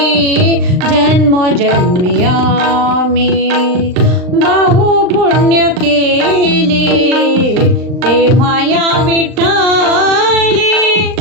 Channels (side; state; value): left; late; 39 ms